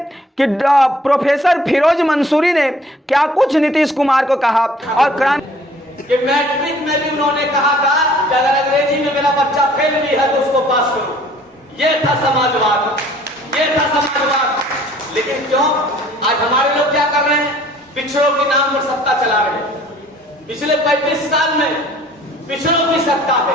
कि प्रोफेसर फिरोज मंसूरी ने क्या कुछ नीतीश कुमार को कहा। और कि मैट्रिक में भी उन्होंने कहा था कि अगर अंग्रेजी में मेरा बच्चा फेल भी है तो उसको पास करो। ये था समाजवाद, ये था समाजवाद। लेकिन क्यों आज हमारे लोग क्या कर रहे हैं? पिछड़ों के नाम पर सत्ता चला रहे हैं। पिछले 35 साल में पिछड़ों की सत्ता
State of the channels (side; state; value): both; normal; correlation 0.55